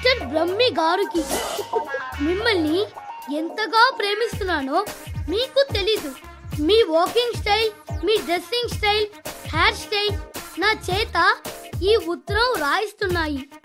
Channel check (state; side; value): identical; both; correlation 1.00